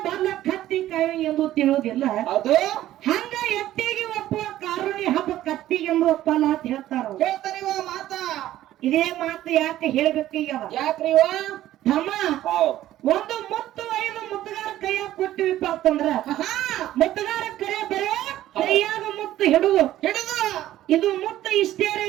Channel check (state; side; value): quieter; left; 13.7 dB